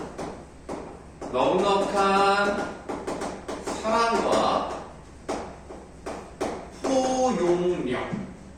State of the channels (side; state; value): both; identical; correlation 1.00